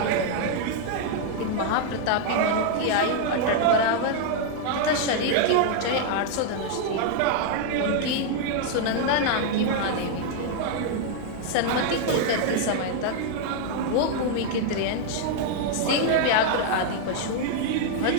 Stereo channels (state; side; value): different; both; correlation 0.00